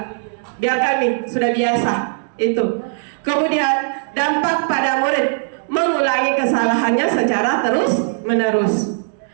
Biarkan nih, sudah biasa itu. Kemudian dampak pada murid mengulangi kesalahannya secara terus menerus.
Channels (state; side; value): silent; left; digital silence